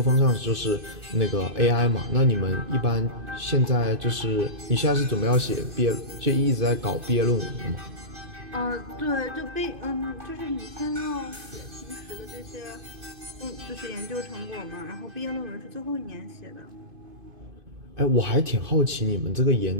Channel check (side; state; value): left; late; 2.5 ms